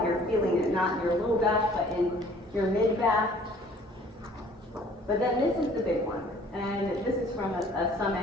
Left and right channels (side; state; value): both; normal; correlation 0.54